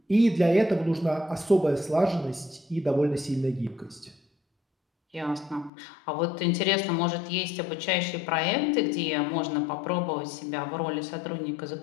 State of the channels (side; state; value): right; drops out; at 5.7 s